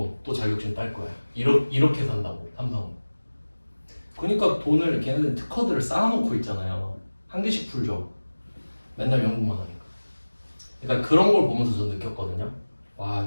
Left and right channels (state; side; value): inverted; both; correlation -1.00